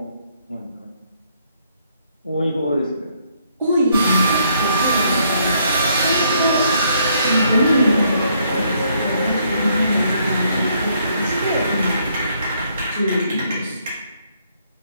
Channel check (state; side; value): inverted; both; correlation -0.70